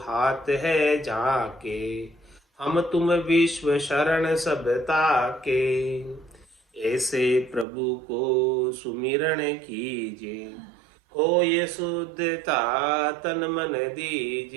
हाथ है जाके, हम तुम विश्व शरण सब ताके, ऐसे प्रभु को सुमिरण कीजे, हो ये शुद्धता तन मन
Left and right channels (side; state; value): left; drops out; at 7.7 s